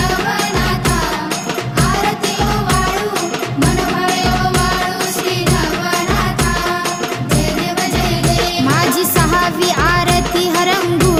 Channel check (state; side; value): identical; both; correlation 1.00